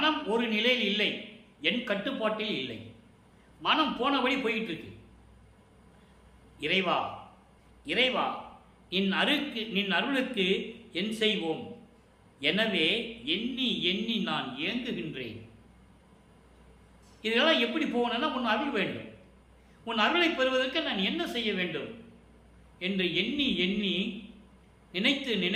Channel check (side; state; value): both; identical; correlation 1.00